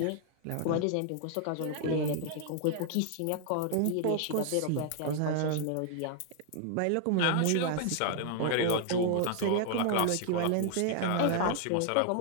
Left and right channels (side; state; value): both; different; correlation 0.00